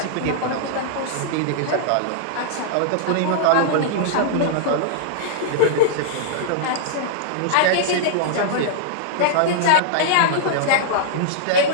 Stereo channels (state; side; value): different; both; correlation -0.01